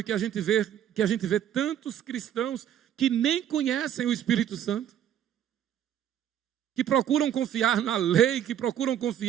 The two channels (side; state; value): left; quieter; 10.2 dB